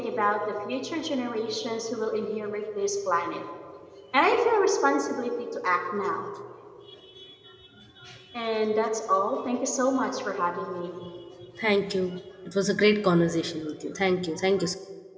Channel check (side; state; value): both; identical; correlation 1.00